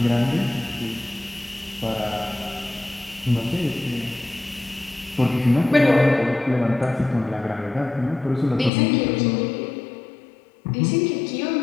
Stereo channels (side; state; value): right; drops out; at 8.7 s